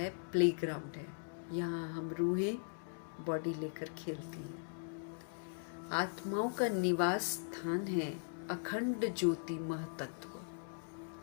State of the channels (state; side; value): silent; right; digital silence